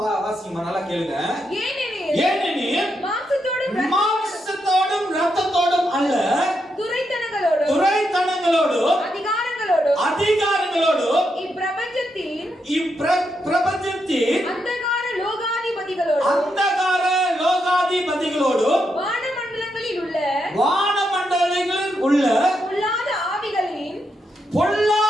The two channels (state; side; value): normal; both; correlation 0.82